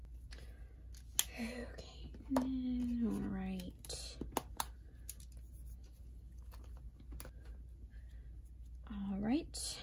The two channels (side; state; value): both; identical; correlation 1.00